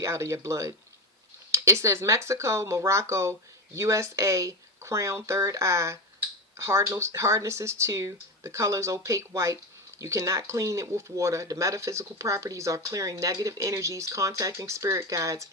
out of your blood. It says Mexico, Morocco, USA, crown, third eye, hardness is 2, the color is opaque white. You cannot clean it with water. The metaphysical properties are clearing negative energies, contacting spirit guides,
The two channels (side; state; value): both; normal; correlation 0.17